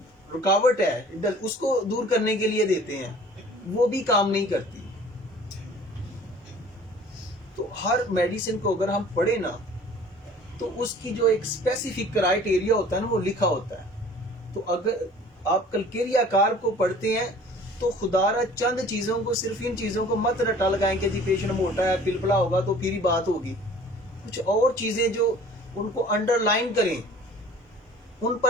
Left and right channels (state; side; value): normal; both; correlation 0.48